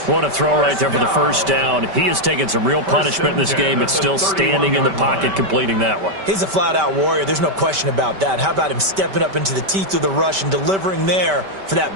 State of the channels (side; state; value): left; late; 5.2 ms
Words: What a throw right there for the first down. He has taken some real punishment in this game. It's still standing in the pocket, completing that one. He's a flat-out warrior. There's no question about that. How about him stepping up into the teeth of the rush and delivering there for